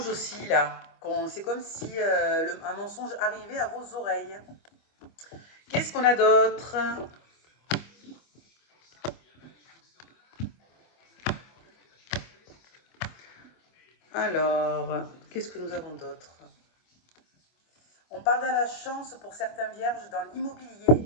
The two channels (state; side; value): late; right; 25 ms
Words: aussi, là. C'est comme si un mensonge arrivait à vos oreilles. Qu'est-ce qu'on a d'autre? Alors, qu'est-ce que nous avons d'autre? On parle de la chance pour certains vierges dans l'immobilier.